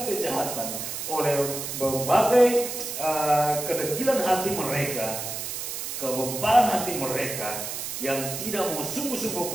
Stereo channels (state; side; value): noise; right; hiss, 5 dB below the sound